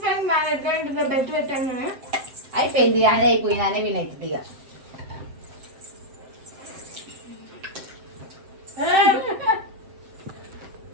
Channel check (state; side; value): late; left; 7.8 ms